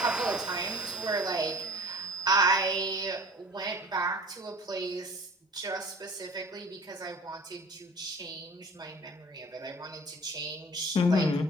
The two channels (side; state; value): both; normal; correlation 0.46